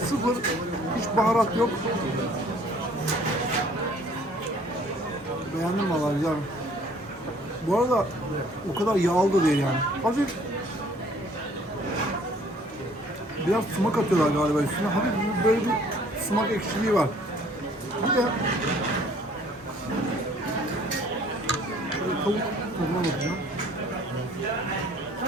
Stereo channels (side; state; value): both; normal; correlation 0.57